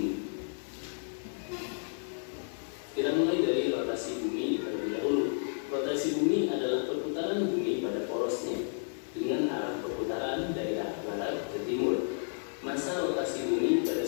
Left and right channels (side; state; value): right; silent; 56 dB below the other